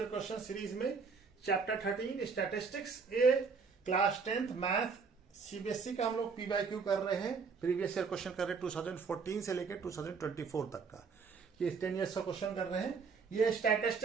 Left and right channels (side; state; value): left; quieter; 5.2 dB